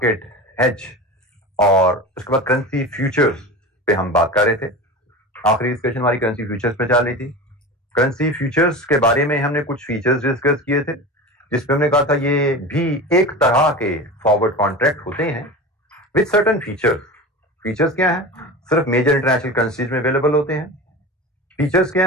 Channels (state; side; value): normal; both; correlation 0.30